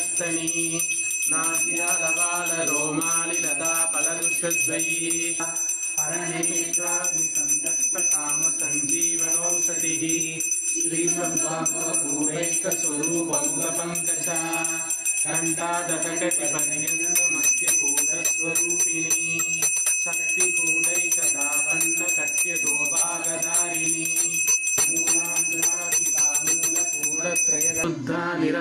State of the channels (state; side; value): identical; both; correlation 1.00